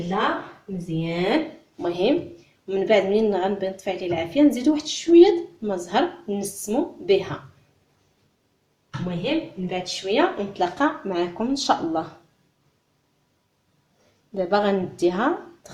مزيان. المهم من بعد منين غنبي نطفي عليه العافيه نزيدو واحد شويه الماء زهر نسمو بها. المهم من بعد شويه نتلاقى معكم ان شاء الله. دابا غنديها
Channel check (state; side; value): identical; both; correlation 1.00